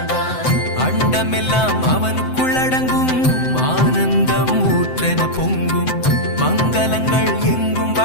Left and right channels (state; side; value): late; right; 7.8 ms